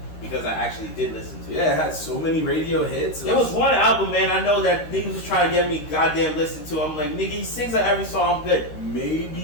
because I actually did listen to it. Yeah, it had so many radio hits. There was one album, man. I know that niggas was trying to get me goddamn listen to. I'm like, nigga, he sings on every song. I'm good.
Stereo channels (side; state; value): right; late; 13 ms